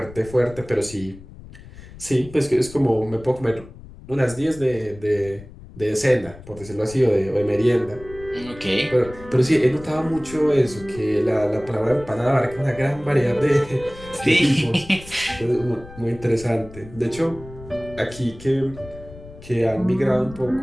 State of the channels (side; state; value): left; noise; rumble, 18 dB below the sound